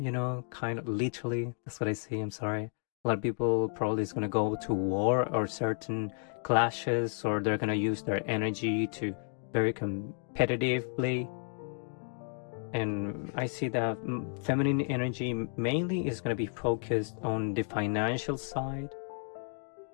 know, kind of literally. That's what I see. I'm sorry. A lot of people probably is gonna go to war or certain clashes, or they're gonna use their energy to very competitively. And I see that feminine energy mainly is going to be focused on the financial side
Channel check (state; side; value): silent; right; 56 dB below the other